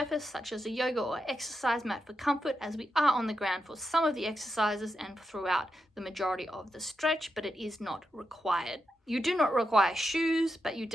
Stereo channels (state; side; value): normal; both; correlation 0.87